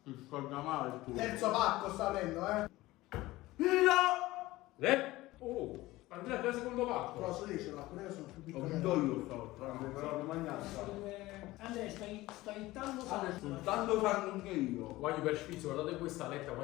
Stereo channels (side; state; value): right; quieter; 18.3 dB